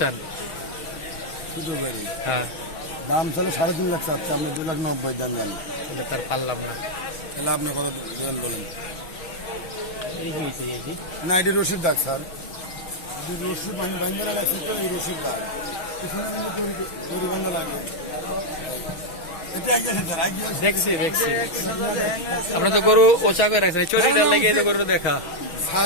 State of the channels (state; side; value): late; right; 6.2 ms